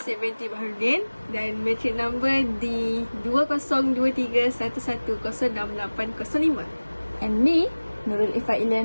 Baharudin dan matric number di 202311106805. And me, Nurul Ifa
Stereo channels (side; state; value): both; inverted; correlation -1.00